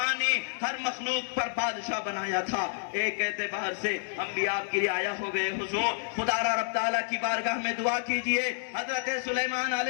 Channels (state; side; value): silent; right; 58 dB below the other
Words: ہر مخلوق پر بادشاہ بنایا تھا۔ ایک اعتبار سے ہم بھی آپ کی رعایا ہو گئے، حضور خدا را رب تعالیٰ کی بارگاہ میں دعا کیجئے۔ حضرت سلیمان